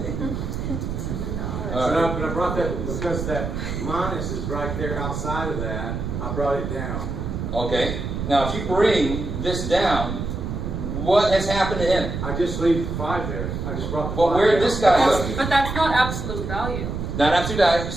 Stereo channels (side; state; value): right; noise; rumble, 4 dB below the sound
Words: But I brought that because that minus is right there outside of that. I brought it down. Okay. Now, if you bring this down, what has happened to him? I just leave 5 there. I just brought the 5 Well, where did down. this guy go? But that's not absolute value. Not absolute value.